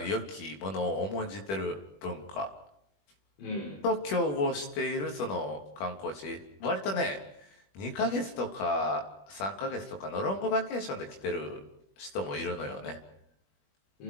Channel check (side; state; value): right; late; 21 ms